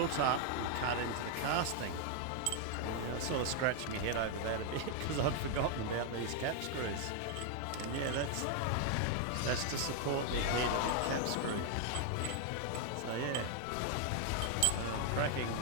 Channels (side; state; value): both; different; correlation 0.00